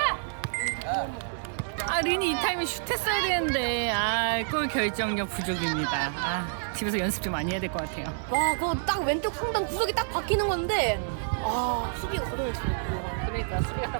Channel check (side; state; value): left; silent; 59 dB below the other